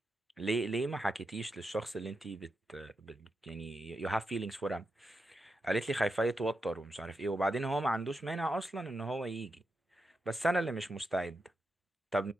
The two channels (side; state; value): both; normal; correlation 0.86